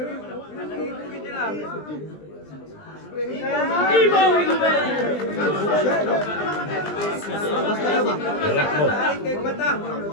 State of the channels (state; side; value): late; right; 20 ms